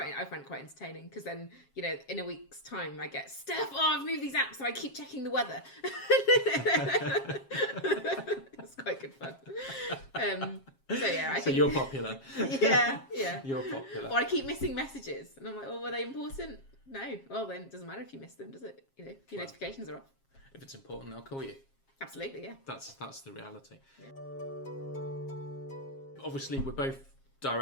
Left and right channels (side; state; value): right; late; 7.4 ms